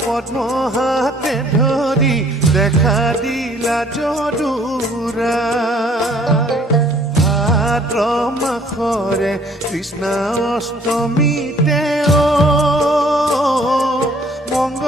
পদ্ম হাতে ধৰি দেখা দিলা যদুৰায় ভাদ্ৰ মাসৰে কৃষ্ণ অষ্টমীতে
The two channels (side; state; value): both; normal; correlation 0.58